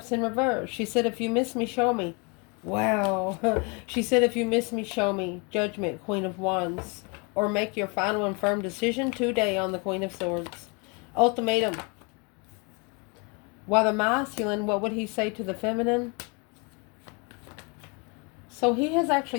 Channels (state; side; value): quieter; right; 31.0 dB